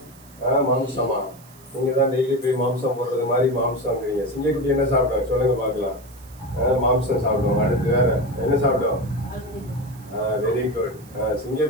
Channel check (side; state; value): right; noise; hiss, 24 dB below the sound